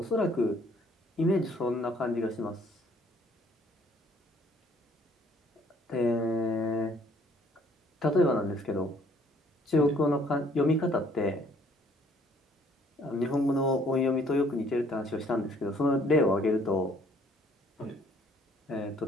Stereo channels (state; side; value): normal; both; correlation 0.61